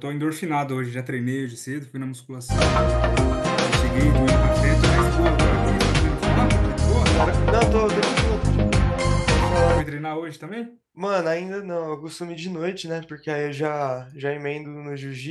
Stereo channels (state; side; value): identical; both; correlation 1.00